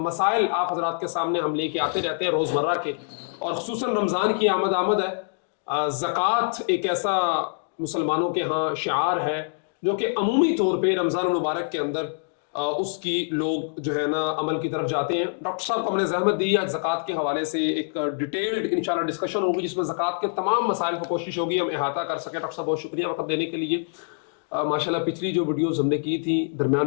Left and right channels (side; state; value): right; silent; digital silence